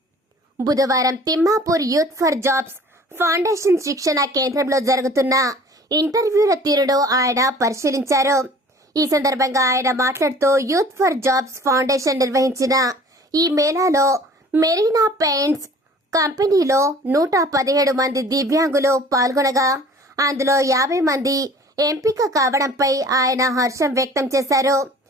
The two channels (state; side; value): normal; both; correlation 0.48